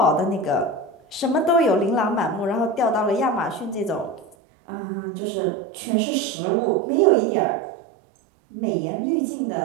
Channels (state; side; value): drops out; left; at 4.4 s